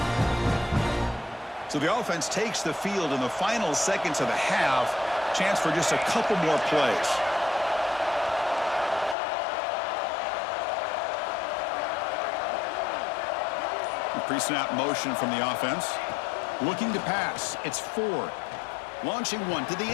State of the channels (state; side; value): drops out; right; at 9.2 s